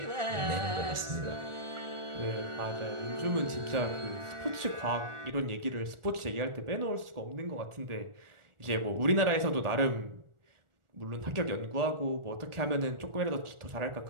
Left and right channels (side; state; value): left; late; 1.4 ms